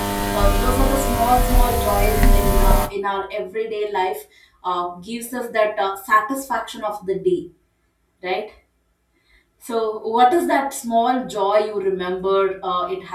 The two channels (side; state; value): both; identical; correlation 1.00